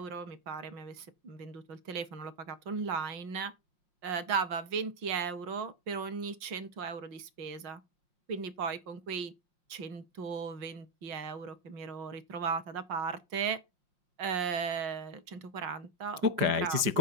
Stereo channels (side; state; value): left; late; 5.6 ms